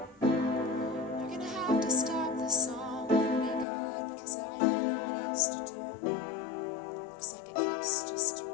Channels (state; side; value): drops out; right; at 3.7 s